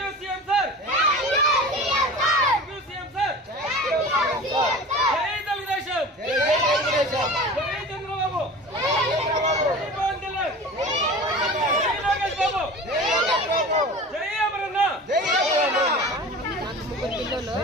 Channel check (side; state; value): both; normal; correlation 0.36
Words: CM sir thank you CM sir జై తెలుగుదేశం జై చంద్రబాబు జై పవన్ కళ్యాణ్ జై లోకేష్ బాబు జై అమరన్న ముగ్గురు పిల్లలు